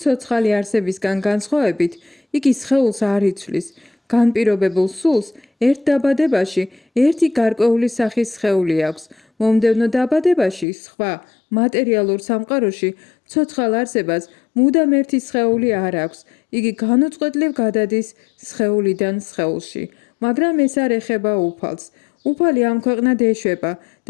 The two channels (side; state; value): right; drops out; at 10.7 s